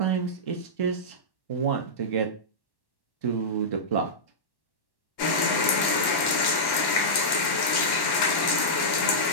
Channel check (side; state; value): right; late; 1.1 ms